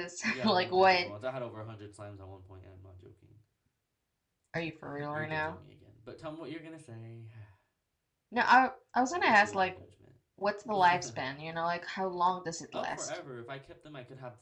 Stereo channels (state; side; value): identical; both; correlation 1.00